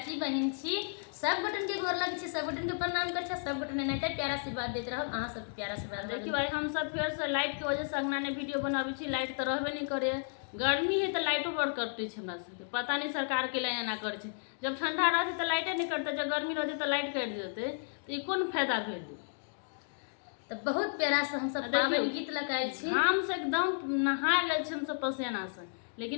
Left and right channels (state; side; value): silent; right; digital silence